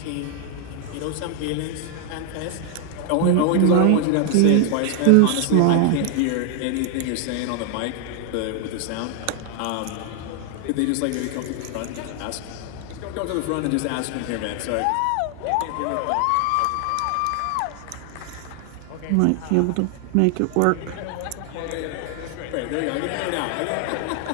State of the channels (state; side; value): different; both; correlation 0.00